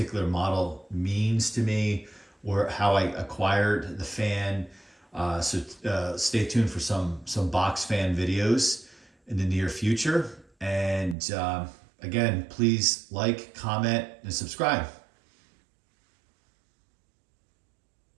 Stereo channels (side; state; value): left; drops out; at 11.2 s